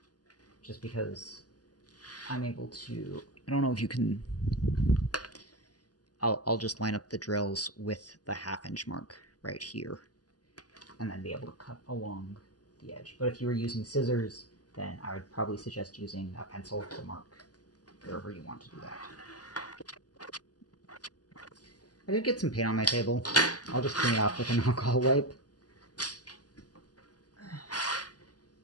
just because I'm able to, I don't know if you can, I'll just line up the drills with the 1/2 inch mark right here, and then be able to cut along the edge. But if you were using scissors, then I would probably suggest using a pencil to mark wherever you want to do that. I did get some paint on my table. I'll just clean it off with an alcohol wipe.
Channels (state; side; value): late; right; 0.68 ms